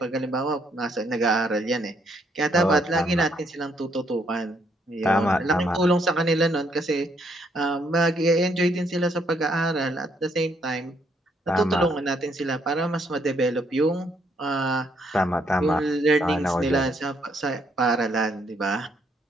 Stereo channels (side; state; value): both; normal; correlation 0.71